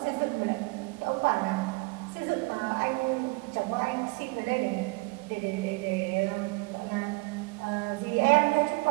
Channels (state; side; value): quieter; left; 27.4 dB